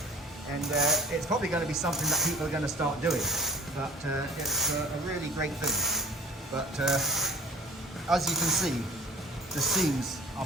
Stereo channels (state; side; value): normal; both; correlation 0.46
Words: And it's probably going to be something that people are going to start doing, but it's a really great thing. But as you can see, the seams